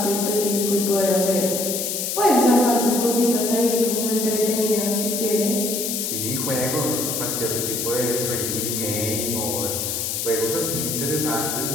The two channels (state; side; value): noise; left; hiss, 2 dB below the sound